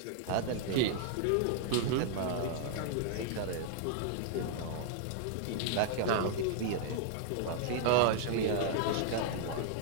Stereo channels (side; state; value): both; different; correlation -0.01